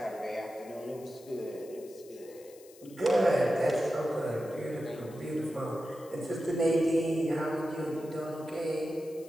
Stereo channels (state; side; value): noise; left; hiss, 23 dB below the sound